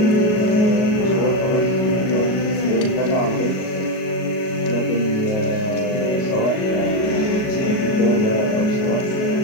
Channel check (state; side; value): late; right; 37 ms